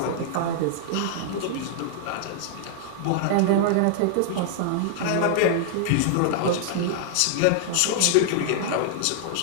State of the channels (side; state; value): both; different; correlation -0.01